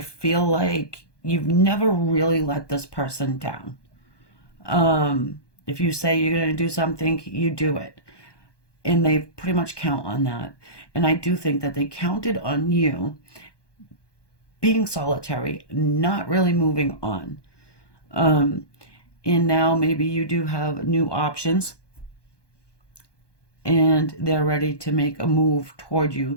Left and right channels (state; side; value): late; right; 1.2 ms